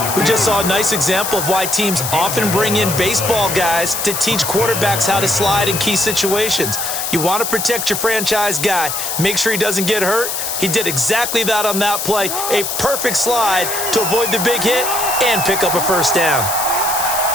We just saw a nice example of why teams often bring in baseball guys to teach quarterbacks how to slide in key situations. You want to protect your franchise guy. Make sure he doesn't get hurt. He did exactly that on that play. A perfect slide to avoid the big hit and pick up a first down.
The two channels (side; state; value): left; noise; hiss, 3 dB below the sound